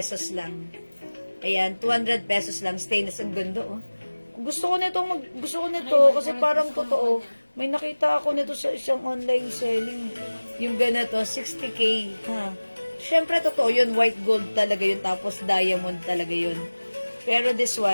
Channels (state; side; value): inverted; both; correlation -1.00